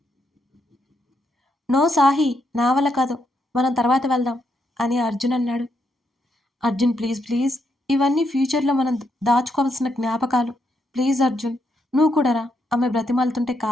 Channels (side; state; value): both; normal; correlation 0.79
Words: నో సాహి, నా వల్ల కాదు, మనం తర్వాత వెళ్దాం అని అర్జున్ అన్నాడు. అర్జున్ ప్లీజ్ ప్లీజ్, ఇవన్నీ ఫ్యూచర్‌లో మనం దాచుకోవాల్సిన జ్ఞాపకాలు. ప్లీజ్ అర్జున్, నువ్వు కూడా రా. ఆమె బ్రతిమాలుతుంటే